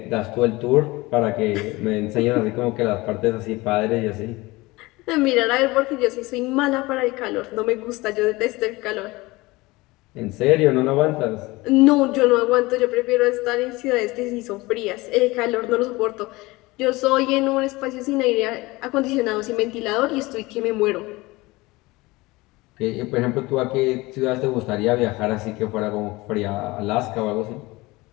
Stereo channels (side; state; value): right; quieter; 21.5 dB